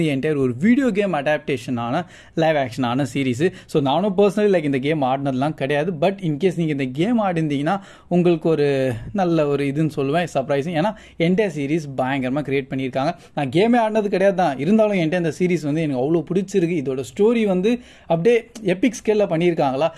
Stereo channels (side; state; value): both; identical; correlation 1.00